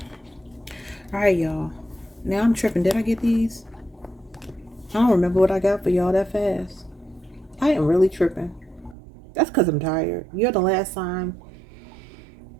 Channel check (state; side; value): drops out; left; at 9.0 s